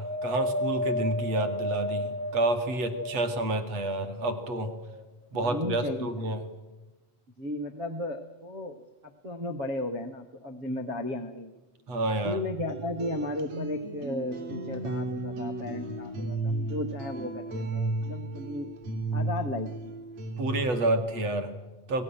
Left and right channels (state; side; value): late; left; 8.1 ms